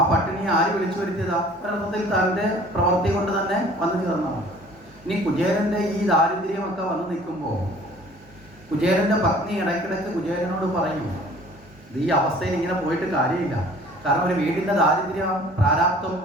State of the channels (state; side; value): normal; both; correlation 0.50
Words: പട്ടിണിയെ ആര് വിളിച്ചു വരുത്തിയതാ? ഒരർത്ഥത്തിൽ തൻ്റെ പ്രവൃത്തി കൊണ്ട് തന്നെ വന്നു ചേർന്നതാണ്. ഇനി കുചേലന്റെ ഈ ദാരിദ്ര്യമൊക്കെ വന്നു നിൽക്കുമ്പോൾ കുചേലന്റെ പത്നി ഇടയ്ക്കിടയ്ക്ക് കുചേലനോട് പറയും, ഈ അവസ്ഥയിൽ ഇങ്ങനെ പോയിട്ട് കാര്യമില്ല. കാരണം ഒരു വീടിന്റെ ദാരിദ്ര്യം, പ്രാരാബ്ദം